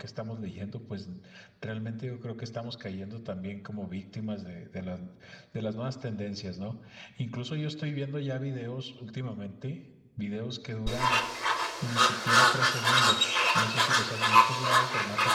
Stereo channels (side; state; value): both; identical; correlation 1.00